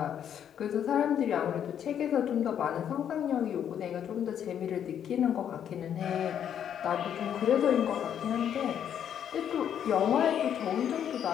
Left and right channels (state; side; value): quieter; right; 9.2 dB